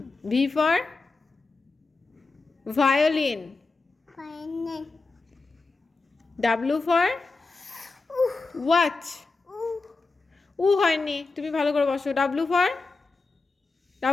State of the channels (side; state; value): right; quieter; 3.8 dB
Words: V for violin W for watch হয়নি তুমি ভালো করে বসো W